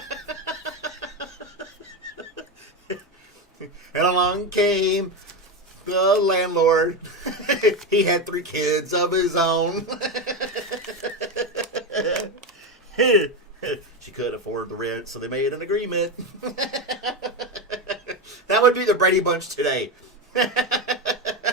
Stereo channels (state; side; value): normal; both; correlation 0.14